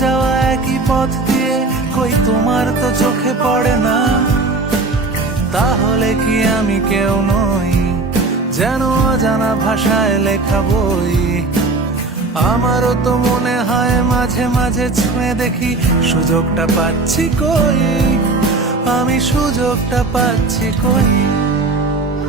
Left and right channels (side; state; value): left; quieter; 3.5 dB